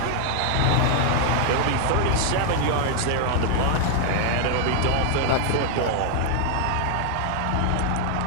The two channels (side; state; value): both; different; correlation 0.00